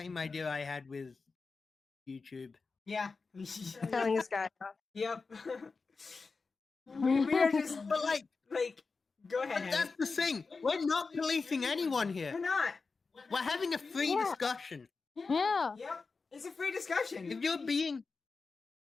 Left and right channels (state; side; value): quieter; right; 4.4 dB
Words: idea I had with YouTube. Yeah. Telling this guy off. Yep. we are just, But like, go ahead, but that's the thing. We're not policing anyone We're here. not. We're having a free discussion. Yeah. Yep. It's a free discussion. If